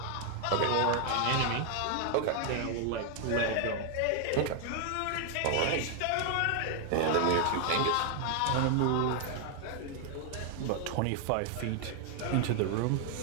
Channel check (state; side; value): different; both; correlation 0.00